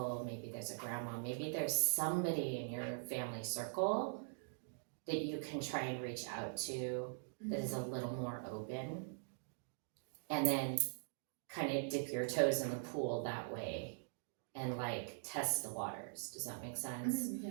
maybe there's a grandma, maybe there's somebody in your family circle that you can try and reach out to that is a little more open, and then kind of dip your toes in the pool that way and like test the waters. Does that make sense?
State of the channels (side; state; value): left; silent; digital silence